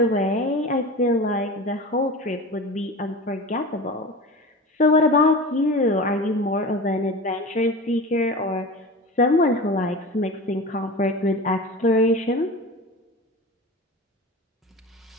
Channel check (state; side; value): normal; both; correlation 0.32